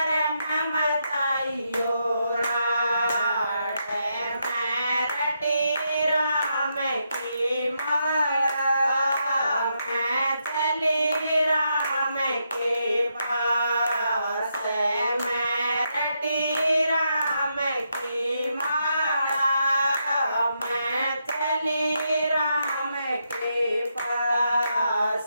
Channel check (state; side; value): inverted; both; correlation -0.81